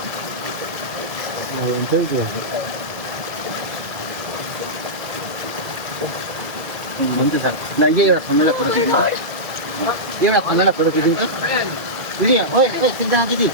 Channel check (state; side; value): late; left; 2.0 ms